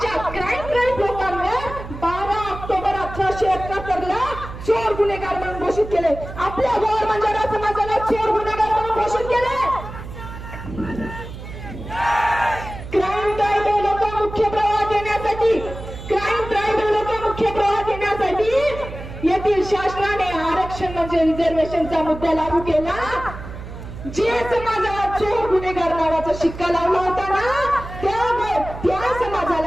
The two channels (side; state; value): right; noise; hum, 11 dB below the sound